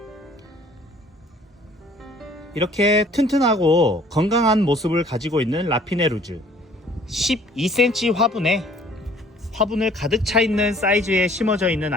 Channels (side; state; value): both; normal; correlation 0.56